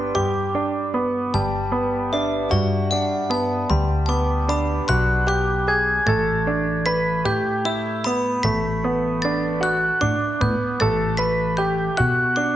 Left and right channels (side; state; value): both; normal; correlation 0.88